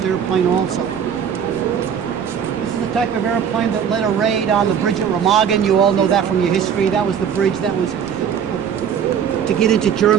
airplane also. This is the type of airplane that led a raid on the bridge at Remagen. You all know that from your history. That was the bridge that was to get into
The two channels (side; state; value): left; quieter; 8.0 dB